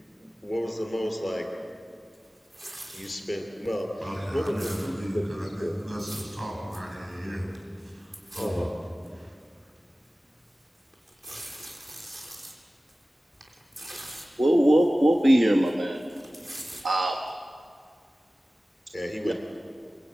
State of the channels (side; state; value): both; normal; correlation 0.97